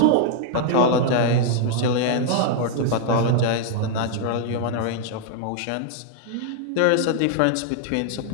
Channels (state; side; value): different; both; correlation -0.01